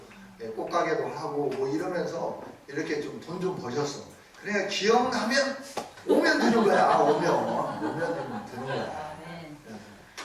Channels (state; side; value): identical; both; correlation 1.00